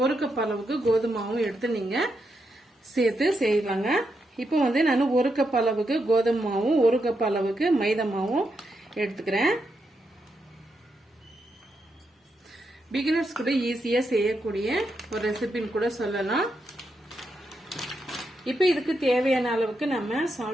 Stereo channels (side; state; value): both; normal; correlation 0.83